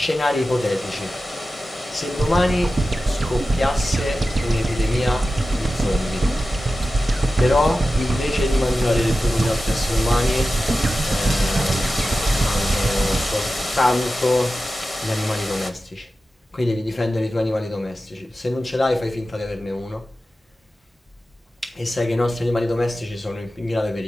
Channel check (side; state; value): both; normal; correlation 0.94